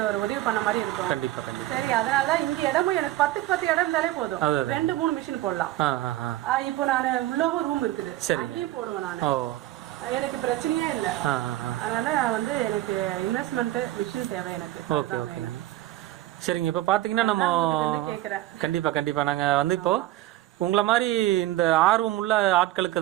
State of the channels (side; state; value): left; quieter; 15.4 dB